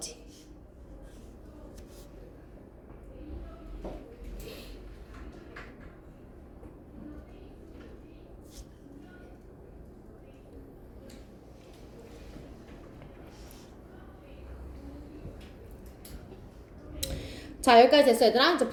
자, 여기까지 됐어, 얘들아. 이제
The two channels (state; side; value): identical; both; correlation 1.00